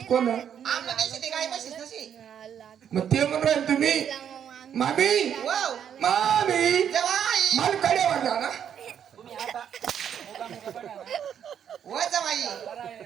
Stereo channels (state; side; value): quieter; left; 8.8 dB